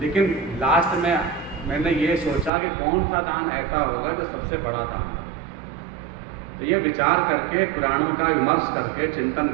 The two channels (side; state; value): left; drops out; at 2.5 s